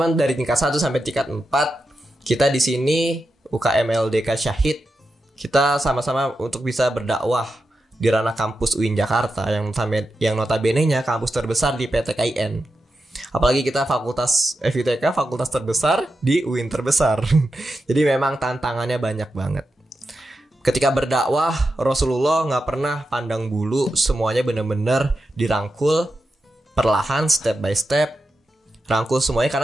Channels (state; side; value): normal; both; correlation 0.89